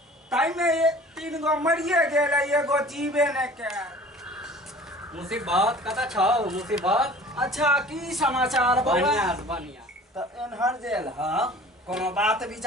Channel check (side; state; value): both; normal; correlation 0.45